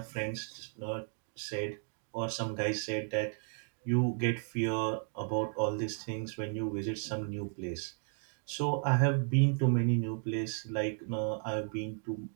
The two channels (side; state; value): left; silent; 55 dB below the other